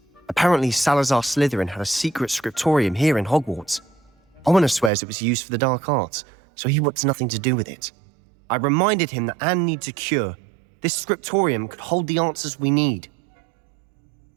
Apparently, Salazar Slytherin had a secret scriptorium here in Hogwarts. Ominous swears it was used for the dark arts, so he wants nothing to do with it. I reminded him that Anne needs a cure. This scriptorium could hold the answers we need.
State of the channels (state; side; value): drops out; left; at 4.9 s